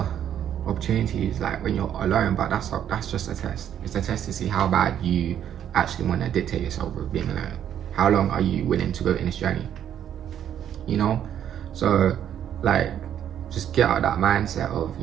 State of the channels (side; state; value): left; quieter; 9.9 dB